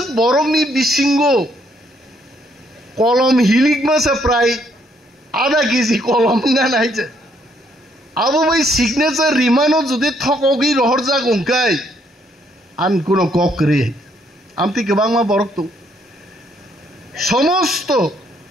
বরংনি বিসিঙ্গ কলম হিলিক মাসে প্রায় আধা কেজি কলম গান আইছে আবো ভাই সিগনেচার রিমানো যদি থকগি রহর যাক উঙ্কাই আন কোনো কক রে আমতি গোबांमा বরক তো সমস্ত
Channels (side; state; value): both; normal; correlation 0.69